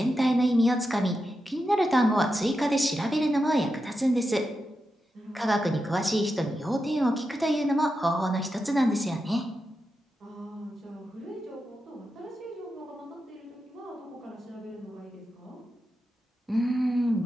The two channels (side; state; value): both; normal; correlation 0.88